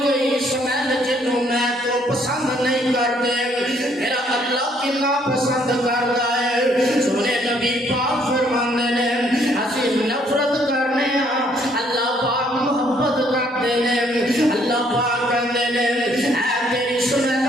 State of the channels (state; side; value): normal; both; correlation 0.66